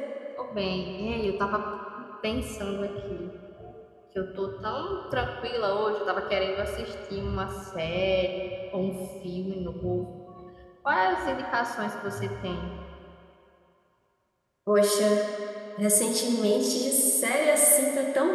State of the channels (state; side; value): identical; both; correlation 1.00